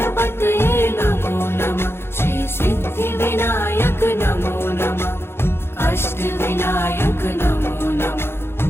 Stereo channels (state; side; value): late; right; 0.12 ms